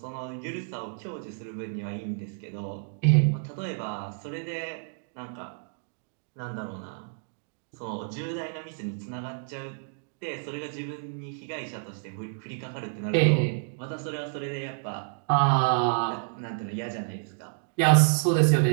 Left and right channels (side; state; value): left; silent; digital silence